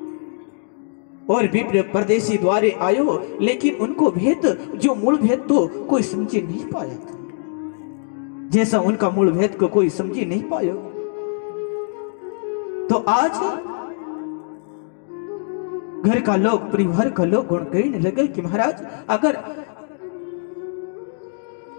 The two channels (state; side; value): silent; right; digital silence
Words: और विप्र परदेशी द्वारे आयो, लेकिन उनको भेद जो मूल भेद तो कोई समझी नहीं पाया था, जैसा उनका मूल भेद को कोई समझी नहीं पायो। तो आज घर का लोग, परिवार का लोग गुण कहने लगे कि महाराज